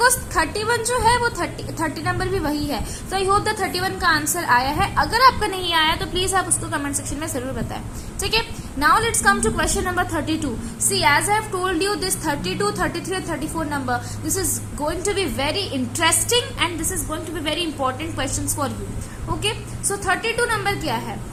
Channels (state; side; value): identical; both; correlation 1.00